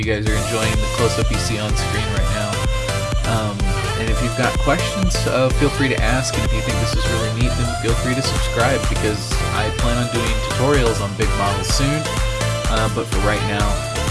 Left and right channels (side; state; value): both; identical; correlation 1.00